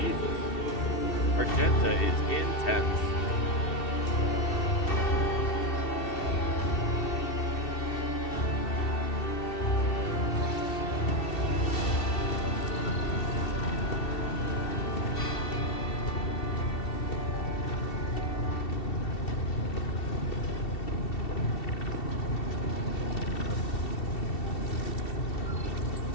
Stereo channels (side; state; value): right; late; 2.7 ms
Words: Argenta is intense.